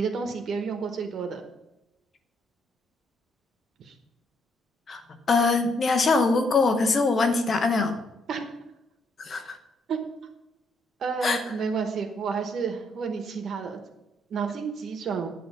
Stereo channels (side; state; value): both; normal; correlation 0.72